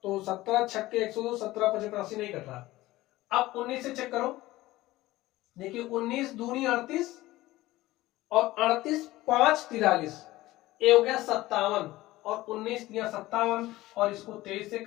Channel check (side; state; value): right; quieter; 17.6 dB